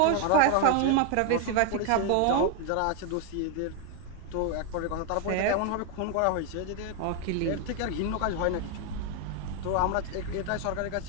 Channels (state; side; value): different; both; correlation 0.00